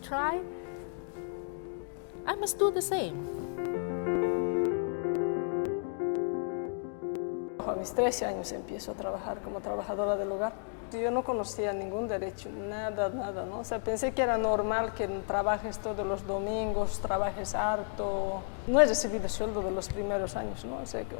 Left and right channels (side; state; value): right; silent; 56 dB below the other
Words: try. I must do the same. A mis 13 años empiezo a trabajar como trabajadora del hogar. Yo no conocía ningún derecho, nada, ¿no? O sea, pensé que era normal que trabajes todos los domingos, trabajes harto. No he recibido sueldo de los primeros años, ¿no? O sea,